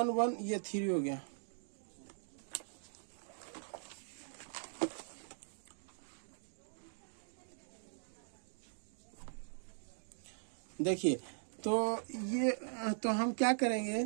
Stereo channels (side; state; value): left; silent; digital silence